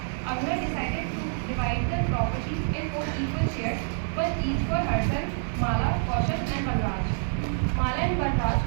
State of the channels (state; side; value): silent; left; 60 dB below the other